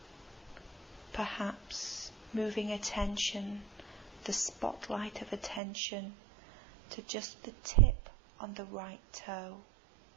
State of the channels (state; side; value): drops out; left; at 5.6 s